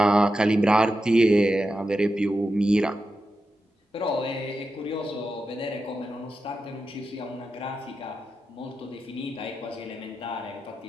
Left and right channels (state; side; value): normal; both; correlation 0.90